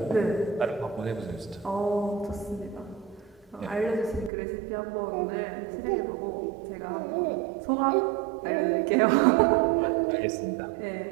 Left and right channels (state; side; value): drops out; left; at 4.3 s